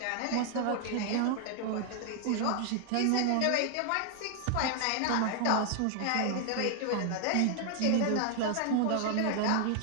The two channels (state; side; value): different; both; correlation 0.00